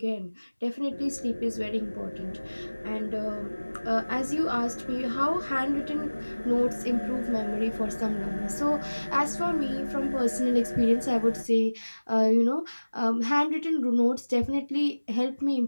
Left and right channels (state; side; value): inverted; both; correlation -1.00